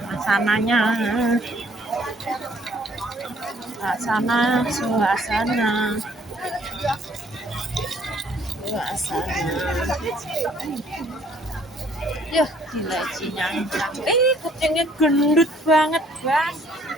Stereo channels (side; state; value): both; normal; correlation 0.61